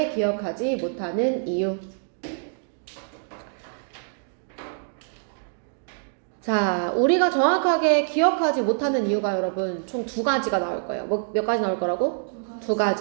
기억하지 못하는 이유. 자, 우리가 정확하게 기억하지 못하는 이유가 여러분 총 두 가지가 나올 거예요. 몇 가지 나올 거라고? 두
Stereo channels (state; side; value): silent; left; digital silence